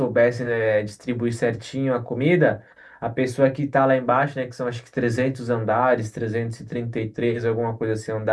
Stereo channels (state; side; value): identical; both; correlation 1.00